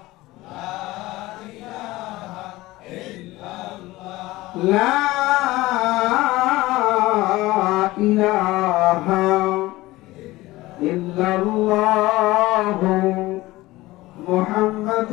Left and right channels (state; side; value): quieter; right; 18.7 dB